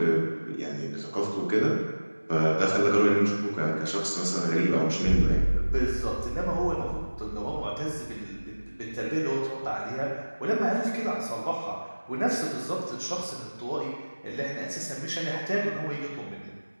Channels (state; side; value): inverted; both; correlation -1.00